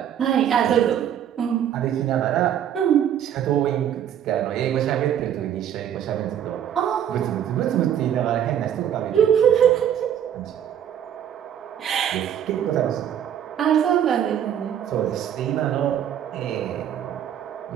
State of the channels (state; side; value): quieter; left; 9.9 dB